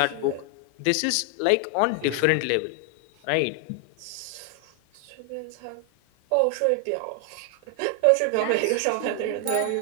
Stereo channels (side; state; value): both; different; correlation 0.00